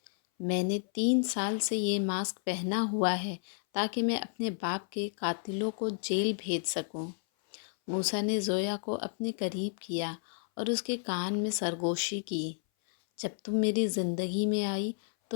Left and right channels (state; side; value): silent; right; 57 dB below the other